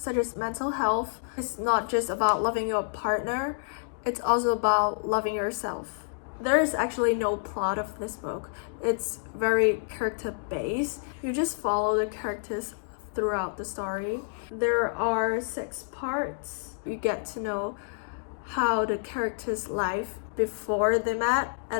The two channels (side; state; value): right; silent; digital silence